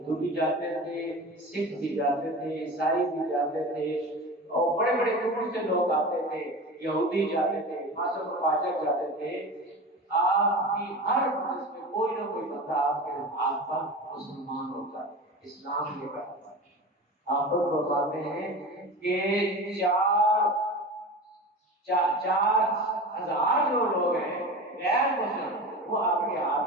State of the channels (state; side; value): normal; both; correlation 0.31